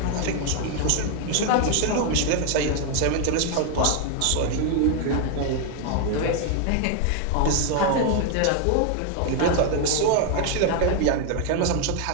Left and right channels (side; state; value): both; different; correlation 0.01